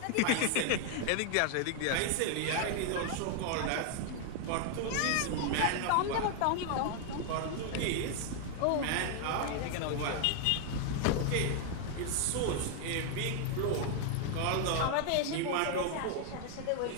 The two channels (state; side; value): different; both; correlation 0.00